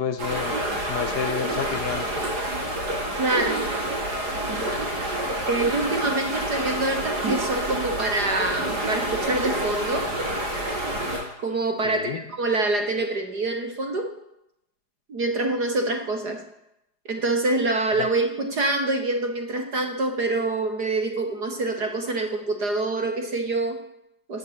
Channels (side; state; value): left; late; 4.9 ms